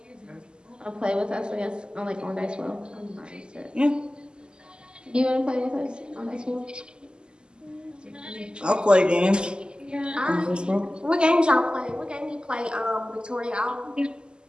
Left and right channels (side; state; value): left; late; 0.048 ms